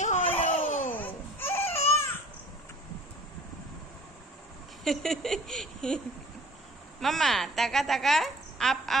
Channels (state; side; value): normal; both; correlation 0.50